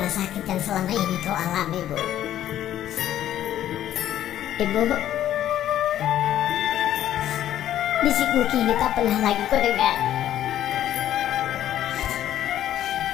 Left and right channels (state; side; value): quieter; right; 11.9 dB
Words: sakit yang selama ini kau alami, Bu. Ibu, bisikmu kini tak pernah lagi kau dengar.